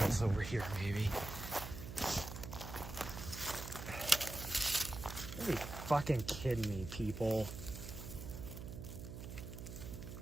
over here, maybe. Are you fucking kidding me, people?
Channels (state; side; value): noise; right; hum, 9 dB below the sound